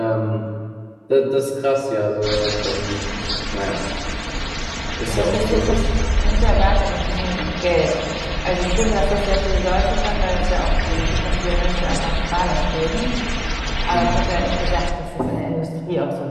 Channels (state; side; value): identical; both; correlation 1.00